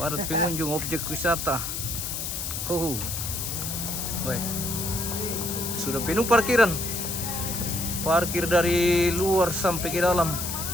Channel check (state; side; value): noise; left; hiss, 4 dB below the sound